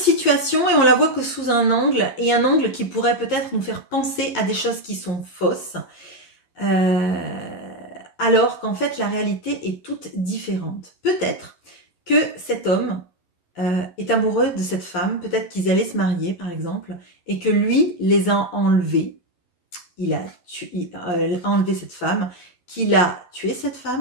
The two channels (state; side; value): late; right; 11 ms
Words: et on la voit que sous un angle, et un angle qui pourrait peut-être nous faire penser à des choses qui sont fausses. Alors qu'en fait la réalité est toute différente. Peut-être que cet homme est amoureux de cette femme, peut-être qu'ils allaient se marier par exemple, et que lui les a enlevés, il a enlevé cette femme, qu'il a tué cette